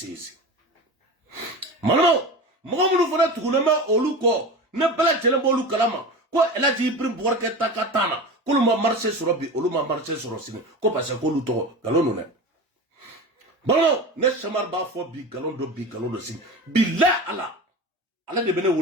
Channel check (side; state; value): both; normal; correlation 0.29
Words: manamo mogo munu fana tuguna ma olu ko ne bela jelembo olu kalama ko Elaji Ibrahim Bouarketa ka tana ko lu ma marché soro bi olu ma marché soro sini ko parce que olu to galono ne Balo ne chamar ba fo bi galon do sin billah ala de bene